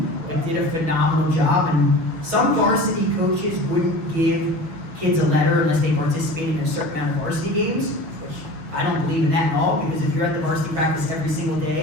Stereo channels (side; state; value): left; late; 6.3 ms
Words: but did a phenomenal job. And some varsity coaches wouldn't give kids a letter unless they participated in a certain amount of varsity games, which I don't believe in that at all, because if you're at the varsity practice every single